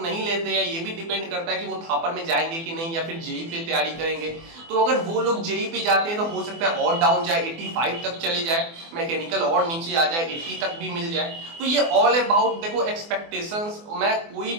नहीं लेते हैं, ये भी डिपेंड करता है कि वो थापर में जाएंगे कि नहीं, या फिर जेई पे तैयारी करेंगे। तो अगर वो लोग जेई पे जाते हैं तो हो सकता है और डाउन जाए, 85 तक चले जाए, मैकेनिकल और नीचे आ जाए, 80 तक भी मिल जाए। तो ये ऑल अबाउट देखो एक्सपेक्टेशंस, मैं कोई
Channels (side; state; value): left; late; 24 ms